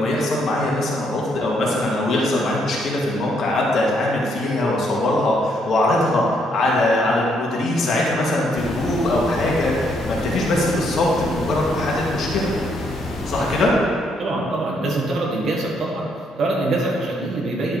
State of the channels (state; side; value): normal; both; correlation 0.72